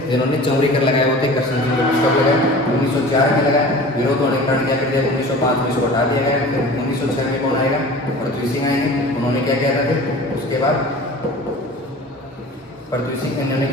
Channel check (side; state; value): both; normal; correlation 0.40